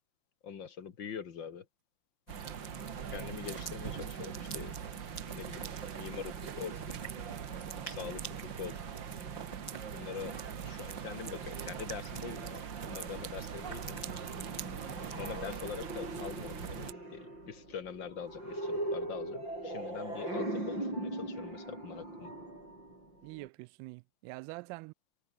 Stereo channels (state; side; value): late; right; 5.7 ms